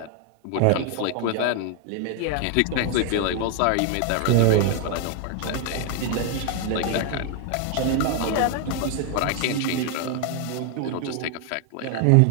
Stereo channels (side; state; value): both; different; correlation 0.00